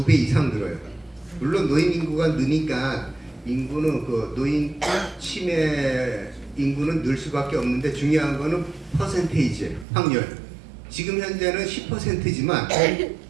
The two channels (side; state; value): left; drops out; at 9.9 s